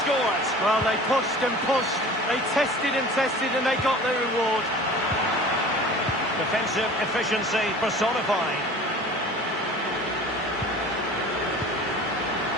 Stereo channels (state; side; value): normal; both; correlation 0.42